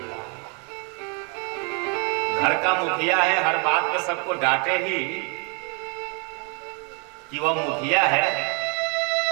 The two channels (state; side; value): quieter; left; 35.8 dB